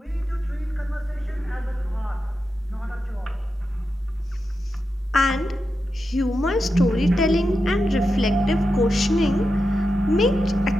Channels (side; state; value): both; normal; correlation 0.88